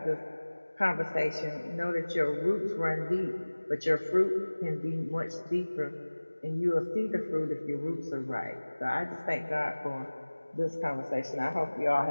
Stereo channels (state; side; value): inverted; both; correlation -1.00